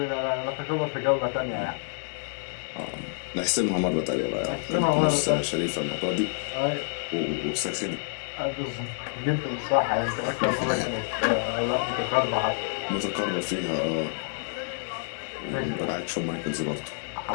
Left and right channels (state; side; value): silent; right; 55 dB below the other